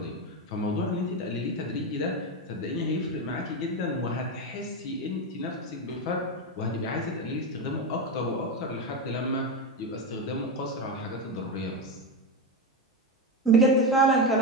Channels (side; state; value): both; normal; correlation 0.14